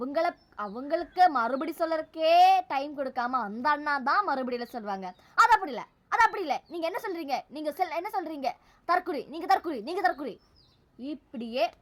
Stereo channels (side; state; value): both; identical; correlation 1.00